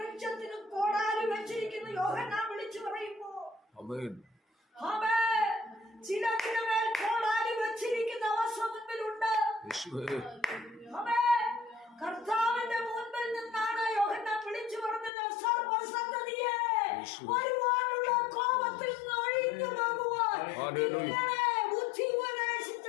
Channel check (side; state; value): right; drops out; at 15.1 s